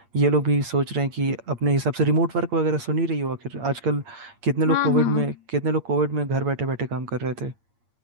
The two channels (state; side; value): late; left; 8.6 ms